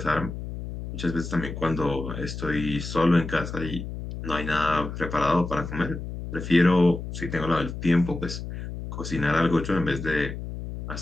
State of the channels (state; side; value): noise; left; hum, 7 dB below the sound